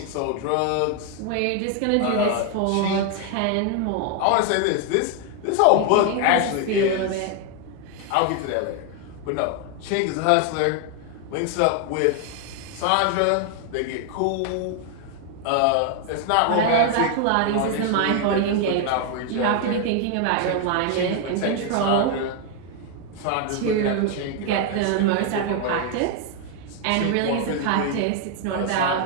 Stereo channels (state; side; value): different; both; correlation 0.01